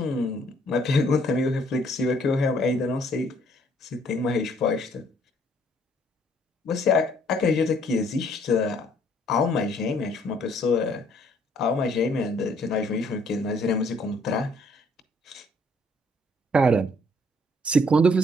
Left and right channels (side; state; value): both; normal; correlation 0.63